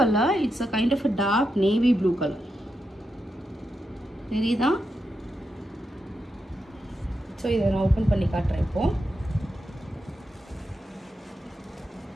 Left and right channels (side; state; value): both; normal; correlation 0.86